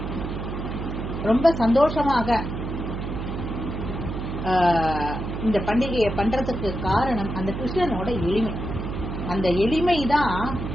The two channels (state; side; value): noise; right; hum, 5 dB below the sound